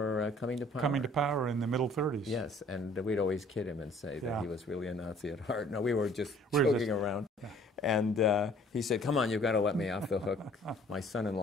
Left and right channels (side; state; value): both; normal; correlation 0.56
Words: coming to power. Coming to power in the middle 30s. Yes, and we'd always kid him and say that yeah. he was really a Nazi at heart. No, we were just joking around. Yeah. And he said, come on, you've got to let me off the hook. My